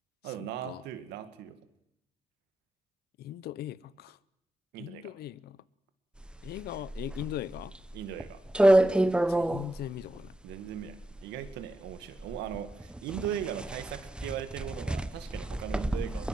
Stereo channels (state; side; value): normal; both; correlation 0.86